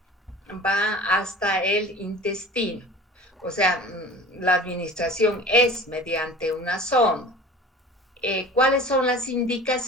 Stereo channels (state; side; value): normal; both; correlation 0.40